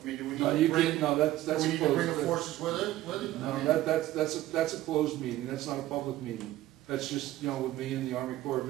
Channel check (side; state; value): left; quieter; 15.1 dB